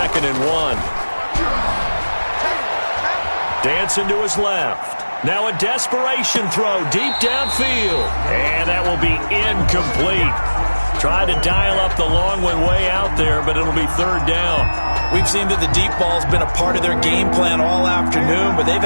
and 1. Dancing to his left. Now a desperation throw deep downfield. And that will be incomplete. Tried to dial up the long one way out there, but it'll be 3rd down. We've seen that the deep ball's been a part of their game plan all afternoon, but they've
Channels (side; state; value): both; inverted; correlation -1.00